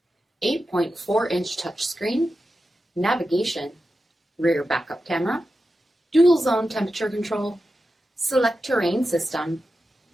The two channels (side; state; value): both; normal; correlation 0.91